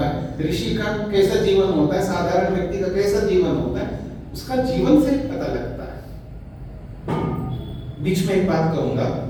है, ऋषि का कैसा जीवन होता है, साधारण व्यक्ति का कैसा जीवन होता है, उसका जीवन से पता लगता है। बीच में एक बात कहूंगा,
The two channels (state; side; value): identical; both; correlation 1.00